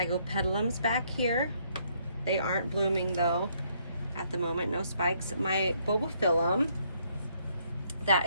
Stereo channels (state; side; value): inverted; both; correlation -0.70